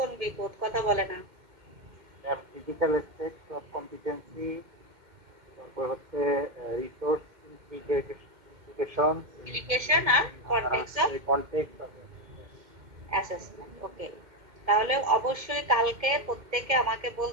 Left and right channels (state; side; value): late; left; 2.1 ms